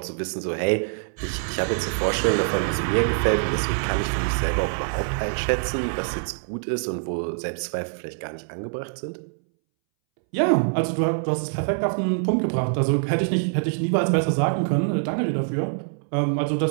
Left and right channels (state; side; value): silent; left; 62 dB below the other